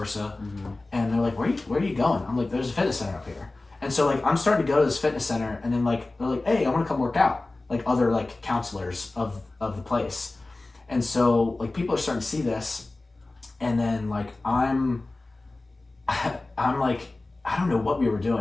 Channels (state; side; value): quieter; right; 3.1 dB